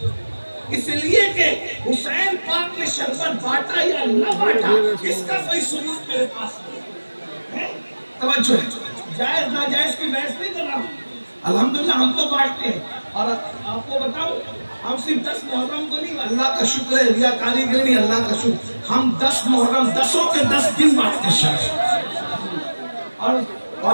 इसलिए कि हुसैन पाक ने शरबत बांटा या न बांटा, इसका कोई सबूत मेरे पास नहीं है। तवज्जो है, जायज नाजायज की बहस नहीं कर रहा हूँ। अल्हम्दुलिल्लाह हम तो बांटते हैं, और आपको बताओ हम सिर्फ 10 मुहर्रम को नहीं, अल्लाह का शुक्र है, रिया कारीगर नहीं, अल्लाह का शुक्र, हम 10 मुहर्रम 10 के 10 दिन बांटते शर्बत। और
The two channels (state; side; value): inverted; both; correlation -1.00